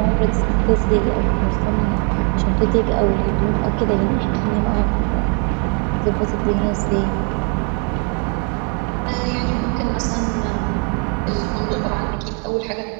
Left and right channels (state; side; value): quieter; left; 38.8 dB